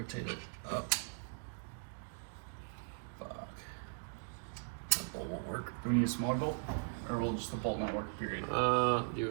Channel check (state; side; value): silent; left; digital silence